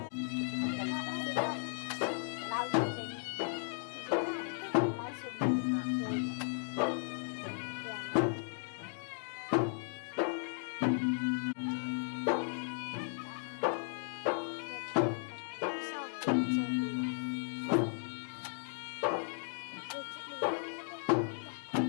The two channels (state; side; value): silent; right; digital silence